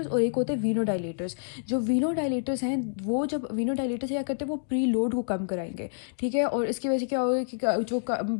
और एक होते हैं वीनो डायलेटर्स। जो वीनो डायलेटर्स हैं, वो जब वीनो डायलेटर्स क्या करते हैं, वो प्री लोड को कम कराएंगे, ठीक है? और इसकी वजह से क्या होगा कि जो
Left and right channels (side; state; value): right; silent; digital silence